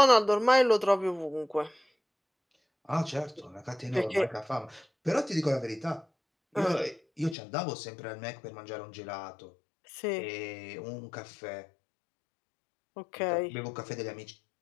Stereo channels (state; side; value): drops out; right; at 7.4 s